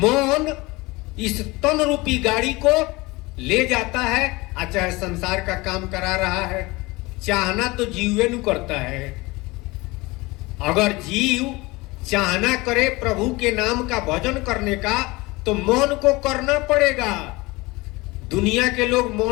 इस तन रूपी गाड़ी को ले जाता है, चाहे संसार का काम करा रहा है। चाहना तो जीवे नु करता है। अगर जीव चाहना करे प्रभु के नाम का भजन करने का, तो मन को करना पड़ेगा। दुनिया के लोग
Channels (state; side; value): quieter; right; 22.8 dB